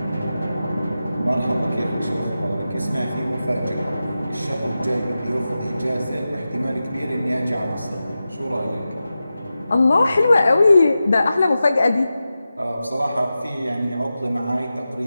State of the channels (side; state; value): both; inverted; correlation -0.93